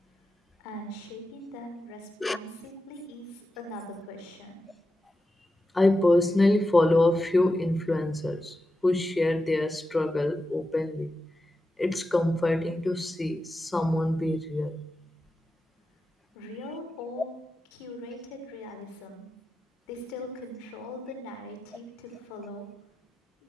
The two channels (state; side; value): normal; both; correlation 0.90